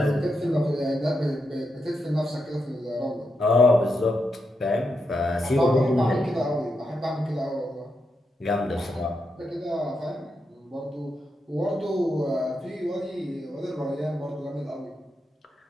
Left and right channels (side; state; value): both; normal; correlation 0.84